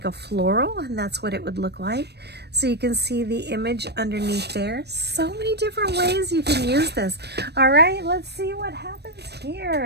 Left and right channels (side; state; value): left; late; 0.48 ms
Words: a floral, and that's what it would look like. So you can see the image underneath there. So many different ways you can use this. All right, let's see what happens here.